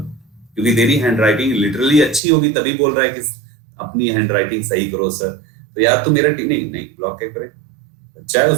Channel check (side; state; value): left; drops out; at 2.2 s